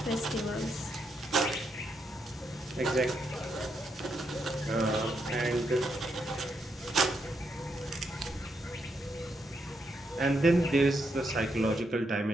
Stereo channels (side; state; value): both; normal; correlation 0.80